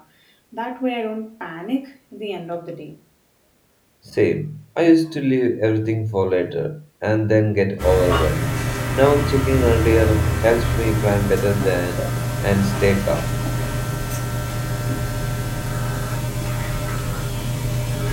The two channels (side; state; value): both; identical; correlation 1.00